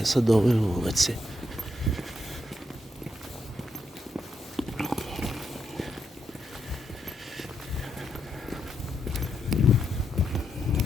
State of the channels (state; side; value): normal; both; correlation 0.80